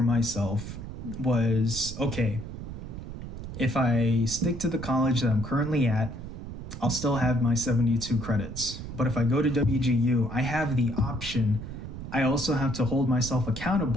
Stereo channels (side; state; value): right; noise; rumble, 9 dB below the sound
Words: myself was, okay, if I stick to the college that I'm currently at, I'll still have my 72 credits. But if I go to WGU, I have the option. I also have to hold myself